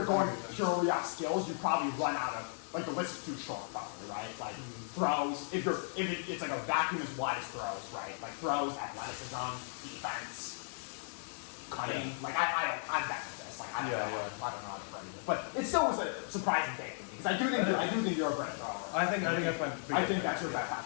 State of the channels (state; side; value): silent; right; digital silence